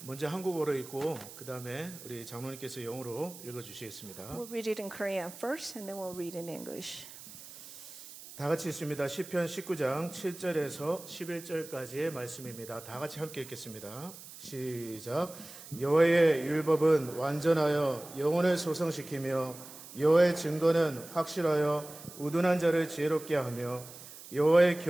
먼저 한국어로 읽고 그 다음에 우리 장로님께서 영어로 읽어주시겠습니다. We'll read it in Korean first, and then we'll read in English. 다 같이 읽습니다. 시편 19장 7절에서 11절까지의 말씀입니다. 다 같이 함께 읽겠습니다. 시작. 여호와의 율법은 완전하여 영혼을 소성시키며 여호와의 증거는 확실하여 우둔한 자를 지혜롭게 하며 여호와의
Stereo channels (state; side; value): noise; right; hiss, 16 dB below the sound